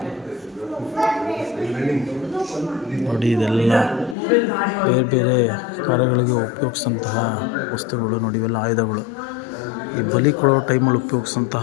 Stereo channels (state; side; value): drops out; right; at 4.2 s